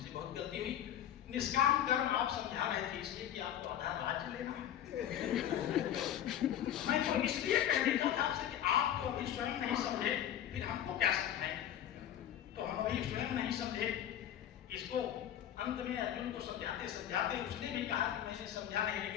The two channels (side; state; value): right; quieter; 10.8 dB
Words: बहुत गलती हुई। निष्काम कर्म आप समझा रहे थे इसलिए कि आपको आधा राज्य लेना है। मैं तो इसलिए कह देता था आपसे कि आप तो अभी स्वयं नहीं समझे, फिर हमको क्या समझाएं? तो हम अभी स्वयं नहीं समझे। इसको अंत में अर्जुन को समझाते समझाते उसने भी कहा कि मैंने समझा नहीं,